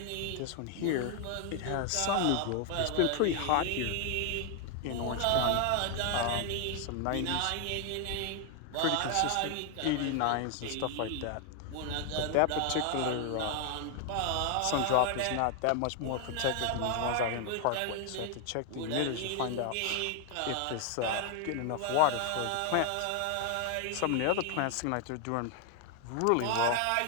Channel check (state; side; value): different; both; correlation 0.00